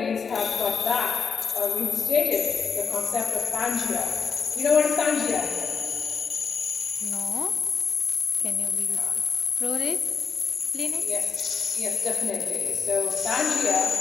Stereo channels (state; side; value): quieter; right; 5.9 dB